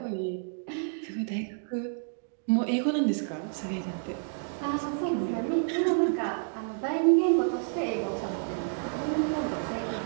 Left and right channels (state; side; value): silent; left; digital silence